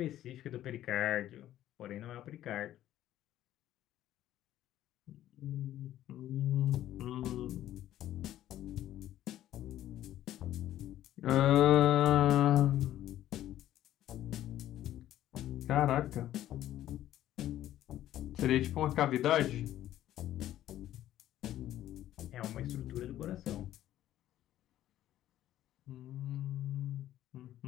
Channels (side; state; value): right; quieter; 12.9 dB